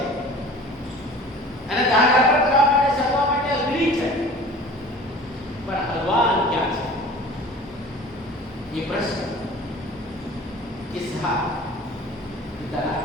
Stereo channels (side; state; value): both; normal; correlation 0.43